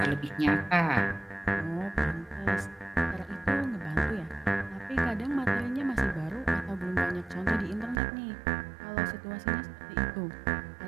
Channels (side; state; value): left; drops out; at 8.0 s